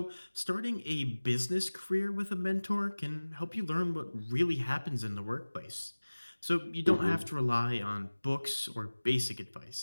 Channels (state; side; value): inverted; both; correlation -1.00